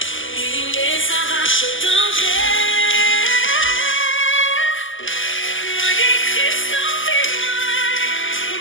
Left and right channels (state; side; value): late; right; 0.57 ms